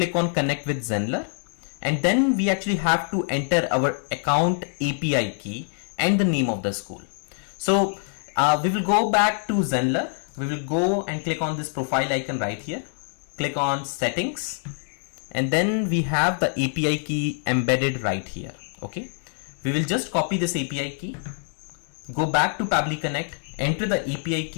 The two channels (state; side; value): silent; right; 62 dB below the other